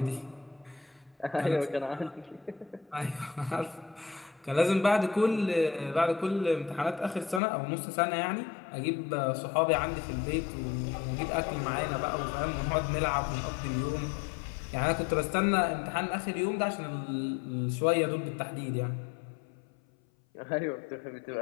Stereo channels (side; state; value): right; drops out; at 7.4 s